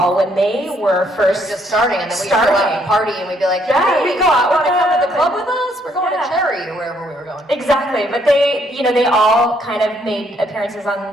when they were first Just starting, and then we'd go out and party, and we'd be like, Yeah, hey, we we go out want to with come to the them. club with us? We're going Yeah. to Cherry or wherever we were going. Exactly, but they all kind of made appearances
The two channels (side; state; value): both; normal; correlation 0.69